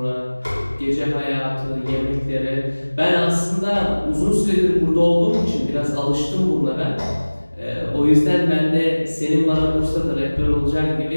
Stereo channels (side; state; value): both; inverted; correlation -1.00